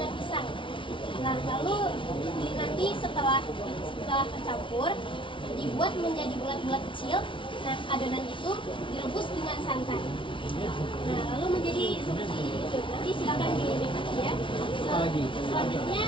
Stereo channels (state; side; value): late; right; 0.25 ms